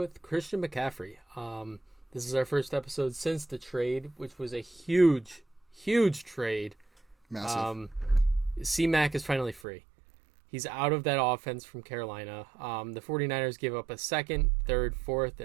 Christian McCaffrey. This is our first episode since the trade, which was a huge trade. Massive. C-Mac is finally free. He's out of that offense from Carolina. The 49ers gave up a second, third, fourth,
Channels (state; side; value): drops out; left; at 9.6 s